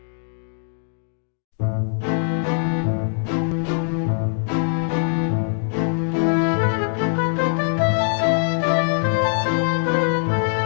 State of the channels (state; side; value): silent; right; digital silence